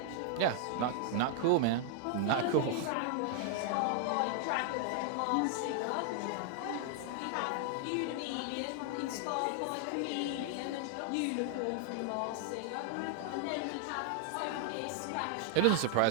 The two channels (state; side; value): different; both; correlation 0.00